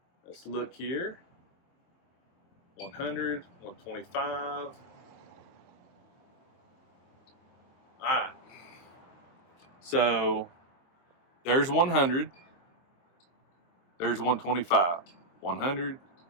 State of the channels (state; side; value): late; right; 23 ms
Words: Let's look here. 100, 125. All right. So there's 100. There's 125. 100,